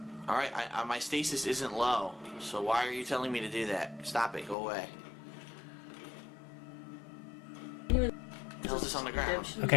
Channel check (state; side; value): drops out; right; at 4.5 s